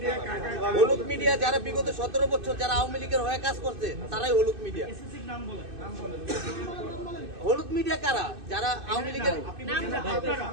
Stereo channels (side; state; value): left; late; 2.6 ms